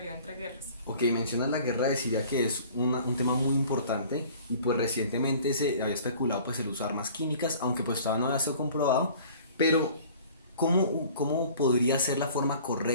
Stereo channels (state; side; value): inverted; both; correlation -0.48